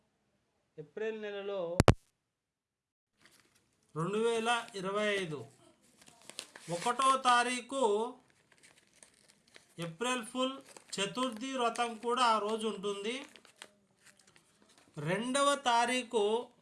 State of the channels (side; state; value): both; identical; correlation 1.00